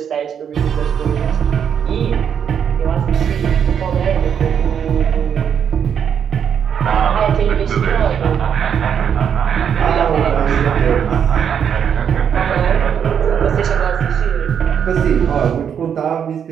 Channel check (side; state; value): left; quieter; 8.0 dB